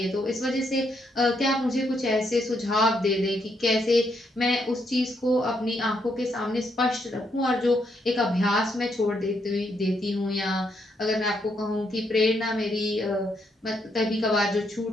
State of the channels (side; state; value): both; normal; correlation 0.77